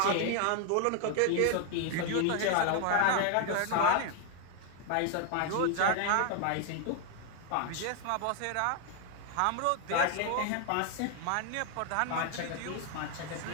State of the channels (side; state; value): both; different; correlation 0.00